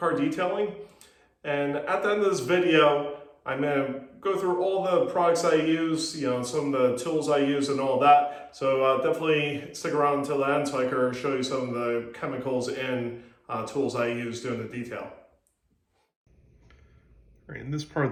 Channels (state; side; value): identical; both; correlation 1.00